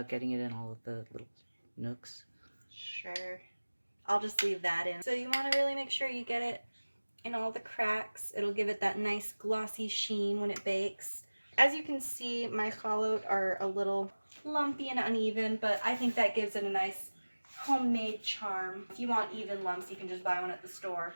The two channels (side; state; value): both; inverted; correlation -1.00